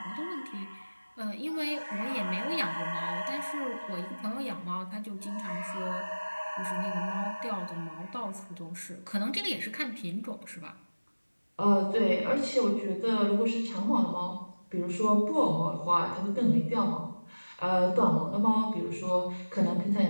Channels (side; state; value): both; inverted; correlation -1.00